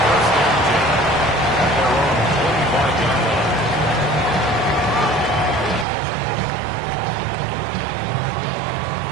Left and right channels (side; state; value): left; drops out; at 5.9 s